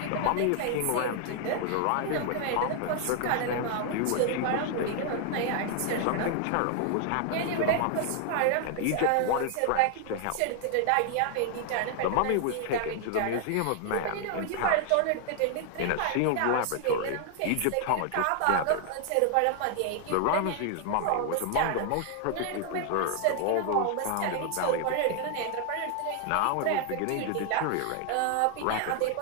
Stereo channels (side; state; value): both; different; correlation 0.00